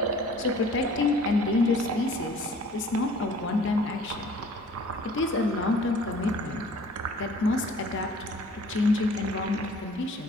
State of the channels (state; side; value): normal; both; correlation 0.51